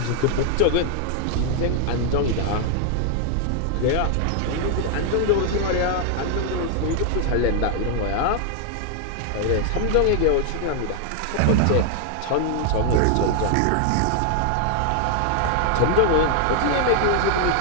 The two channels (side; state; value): both; different; correlation 0.00